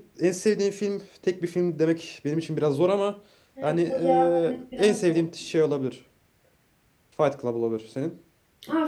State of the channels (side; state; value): both; identical; correlation 1.00